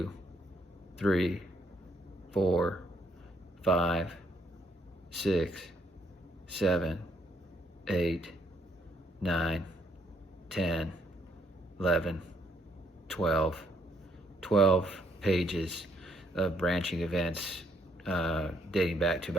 3, 4, 5, 6, 7, 8, 9, 10, 11, 12 pages of branching events dating back to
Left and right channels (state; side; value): normal; both; correlation 0.70